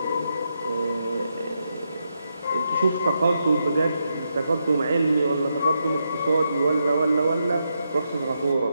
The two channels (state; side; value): inverted; both; correlation -0.83